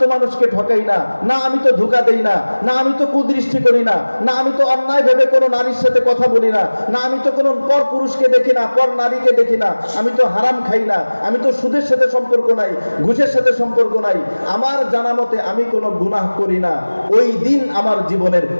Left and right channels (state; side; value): inverted; both; correlation -1.00